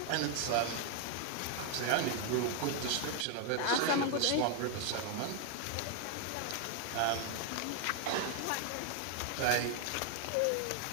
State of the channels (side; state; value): both; different; correlation 0.00